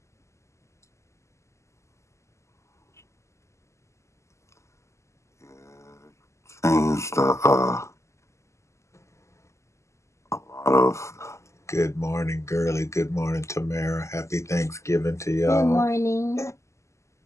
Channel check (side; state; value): right; late; 0.14 ms